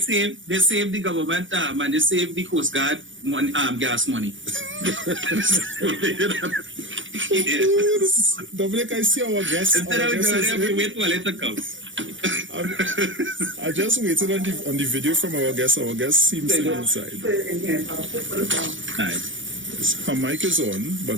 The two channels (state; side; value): late; left; 0.56 ms